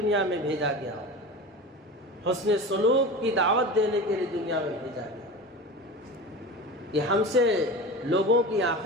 میں بھیجا گیا، حسن سلوک کی دعوت دینے کے لیے دنیا میں بھیجا گیا۔ کہ ہم سے لوگوں کی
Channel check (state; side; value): normal; both; correlation 0.31